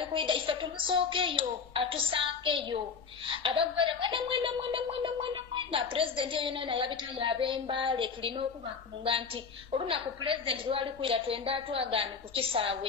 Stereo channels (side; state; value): right; quieter; 5.7 dB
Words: kwida ife tumusookeyo atusankeyo abagwere mwena President yona yabita yabembale tulina okubakunga nti olunaku President lwali kwira twenda atwagane ku